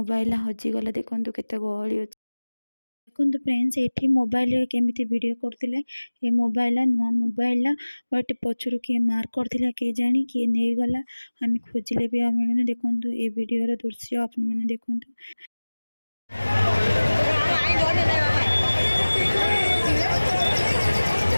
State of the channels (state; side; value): inverted; both; correlation -1.00